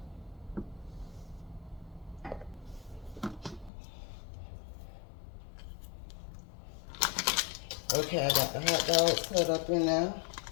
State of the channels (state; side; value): drops out; right; at 3.7 s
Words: Okay, I got the hot dogs cut up in there.